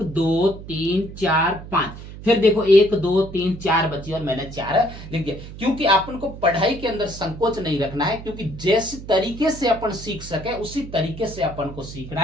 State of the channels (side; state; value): right; noise; hum, 13 dB below the sound